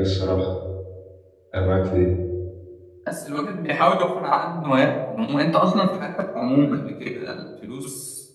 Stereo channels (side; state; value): both; identical; correlation 1.00